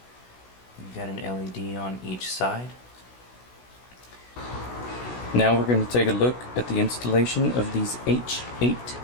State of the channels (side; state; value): right; late; 16 ms